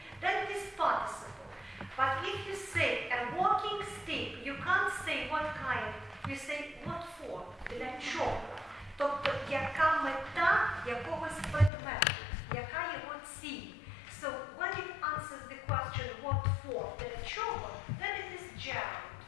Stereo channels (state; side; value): drops out; right; at 11.7 s